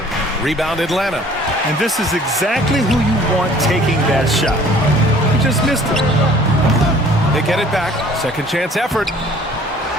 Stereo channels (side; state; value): both; normal; correlation 0.53